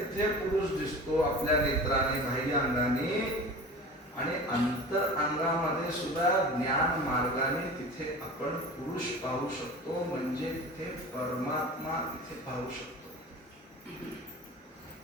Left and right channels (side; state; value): both; normal; correlation 0.36